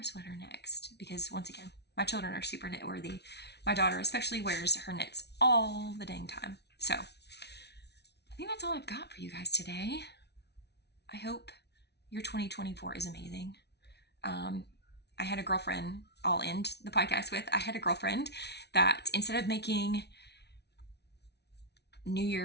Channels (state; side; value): late; right; 0.49 ms